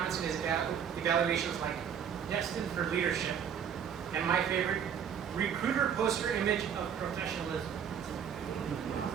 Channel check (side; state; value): left; quieter; 8.1 dB